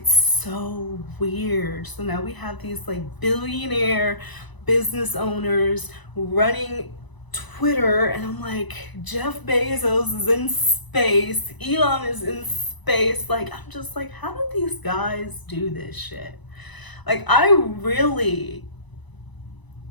so weird. So now we have these like billionaire business owners running Twitter, and I'm like, Jeff Bezos is in space, Elon is in space. Like, I'm just like, how do these guys do this shit? Like, I really,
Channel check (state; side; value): late; right; 1.0 ms